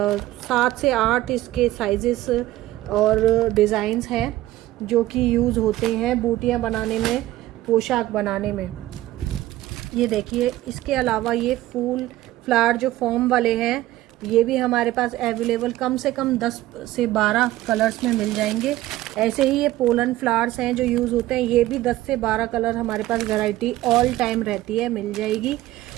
से 8 इसके साइजेस और डिज़ाइंस हैं जो कि यूज़ होते हैं बूटियाँ बनाने में, पोशाक बनाने में। ये देखिए, इसके अलावा ये फूल फ्लावर जो फॉर्म वाले हैं ये भी हमारे पास अवेलेबल कम से कम 10 से 12 कलर्स में मिल जाएंगे। ऐसे ही ये पोलन फ्लावर्स हैं जो यूज़ होते हैं, ये भी 10 से 12 कलर हमारे पास वैरायटी ऑल टाइम रहती है, मिल जाएगी।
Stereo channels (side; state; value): left; quieter; 15.7 dB